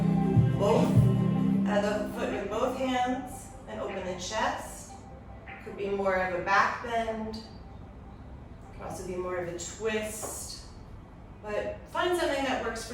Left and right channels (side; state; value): both; identical; correlation 1.00